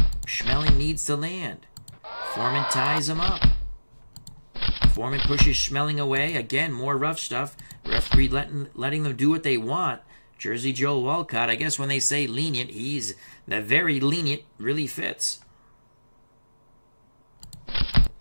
Schmeling needs to land. Foreman ties him up. Foreman pushes Schmeling away. Again, more rough stuff. Referee letting them do what they want. Jersey Joe Walcott, I guess when they say lenient, he's the very lenient, really fits.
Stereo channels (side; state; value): both; inverted; correlation -1.00